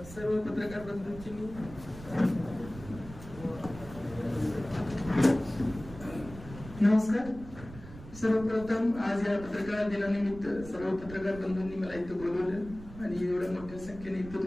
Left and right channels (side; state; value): right; noise; rumble, 15 dB below the sound